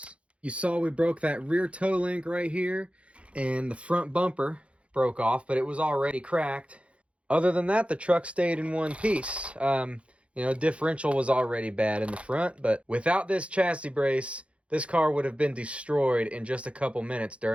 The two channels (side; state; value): left; late; 0.061 ms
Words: You saw we broke that rear toe link right here, and the front bumper broke off, but it was already cracked. Other than that, the truck stayed in one piece. You know, differential was already bad in the front, but without this chassis brace, this car would have been destroyed in just a couple minutes